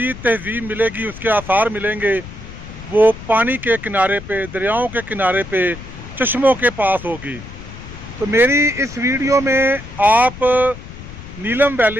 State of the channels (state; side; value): noise; left; rumble, 14 dB below the sound